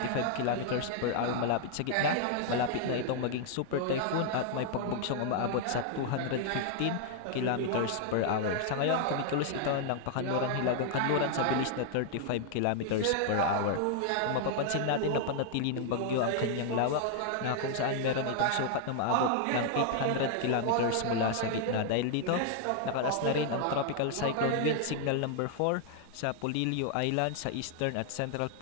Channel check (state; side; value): different; both; correlation 0.00